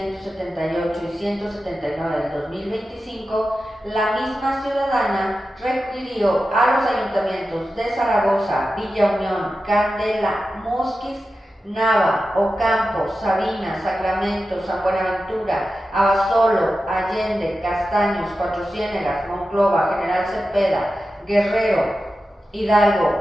y 179 del 2025, la misma ciudadana requirió a los ayuntamientos de Zaragoza, Villa Unión, Candela, Musquis, Nava, Ocampo, Sabinas, Sacramento, San Buenaventura, Abasolo, Allende, Castaños, Cuatro Ciénegas, Monclova, General Cepeda, Guerrero,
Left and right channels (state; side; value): normal; both; correlation 0.92